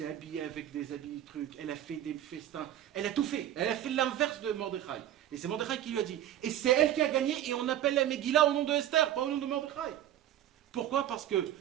habillée avec des habits trucs, elle a fait des festins, elle a tout fait. Elle a fait l'inverse de Mordechai. Et c'est Mordechai qui lui a dit. Et c'est elle qui a gagné, et on appelle la Megillah au nom de Esther, pas au nom de Mordechai. Pourquoi? Parce que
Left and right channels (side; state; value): left; quieter; 11.8 dB